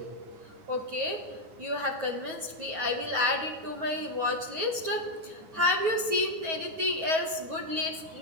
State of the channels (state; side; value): late; left; 9.3 ms